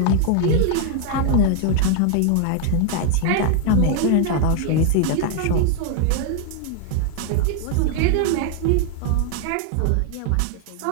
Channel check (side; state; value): both; different; correlation 0.00